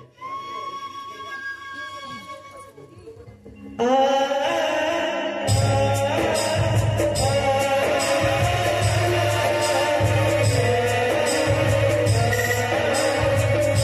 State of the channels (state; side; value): identical; both; correlation 1.00